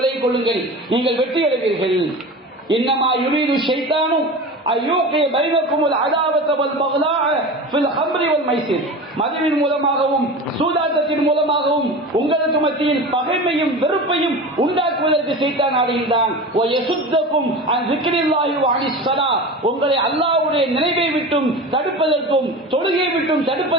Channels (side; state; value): both; normal; correlation 0.31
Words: கொள்ளுங்கள், நீங்கள் வெற்றி அடைவீர்கள். இன்னமா யுரீது ஷைத்தானும் மதுவின் மூலமாகவும் சூதாட்டத்தின் மூலமாகவும் உங்களுக்கு மத்தியில் பகைமையும் வெறுப்பையும் உண்டாக்குவதற்கு சைத்தான் ஆடுகின்றான். உங்களை அல்லாஹ்வுடைய நினைவை விட்டும் தடுப்பதற்கும் தொழுகையை விட்டும்